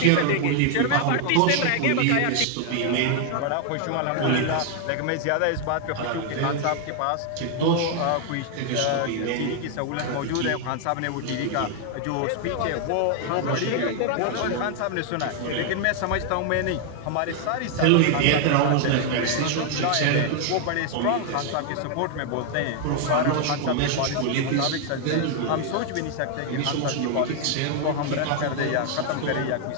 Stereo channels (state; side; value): different; both; correlation 0.00